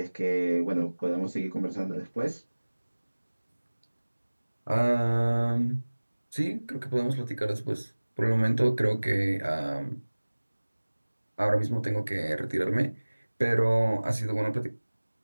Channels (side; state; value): both; inverted; correlation -1.00